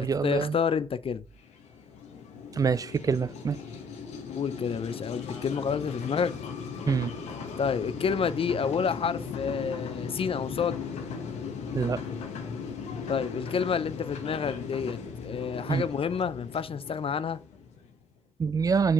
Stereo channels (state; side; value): normal; both; correlation 0.58